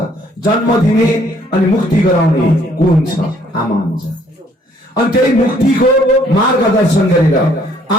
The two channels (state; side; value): normal; both; correlation 0.63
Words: जन्म दिने अनि मुक्ति गराउने को हुन्छ आमा हुन्छ अनि त्यही मुक्तिको मार्गदर्शन गरेर